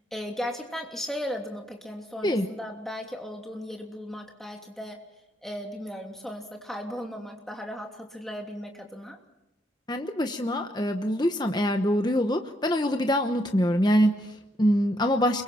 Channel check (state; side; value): normal; both; correlation 0.76